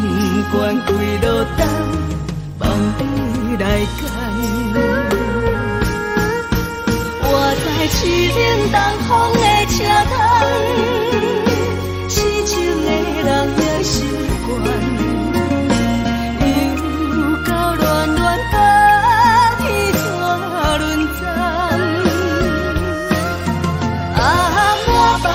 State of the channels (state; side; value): identical; both; correlation 1.00